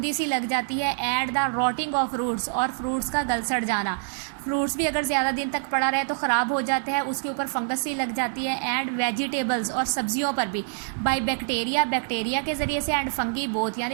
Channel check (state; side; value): silent; left; digital silence